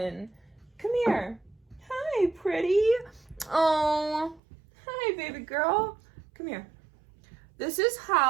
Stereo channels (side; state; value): left; drops out; at 4.4 s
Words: Come here. Hi, pretty. Oh, hi, baby girl. Come here. This is